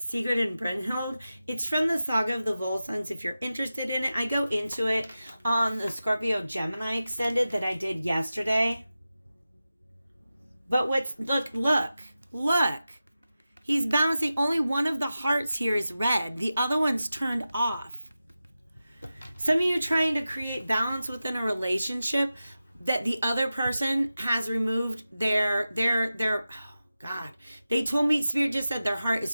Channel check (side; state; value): both; inverted; correlation -0.93